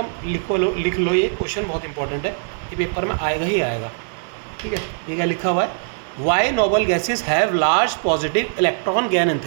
लिख लो, ये क्वेश्चन बहुत इंपॉर्टेंट है, ये पेपर में आएगा ही आएगा, ठीक है। ये क्या लिखा हुआ है, why noble gases have large positive electron gain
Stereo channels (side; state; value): left; silent; digital silence